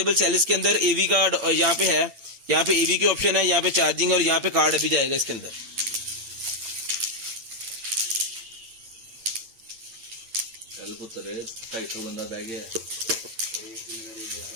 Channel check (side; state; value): left; late; 8.8 ms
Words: सेल। इसके अंदर एवी का यहाँ पे है, यहाँ पे एवी के ऑप्शन है, यहाँ पे चार्जिंग और यहाँ पे कार्ड अभी जाएगा इसके अंदर। कल पुत्र 250 बंदा बह गया।